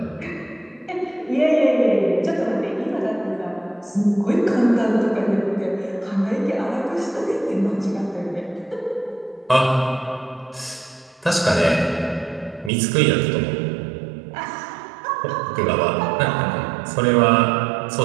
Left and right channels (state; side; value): drops out; left; at 12.7 s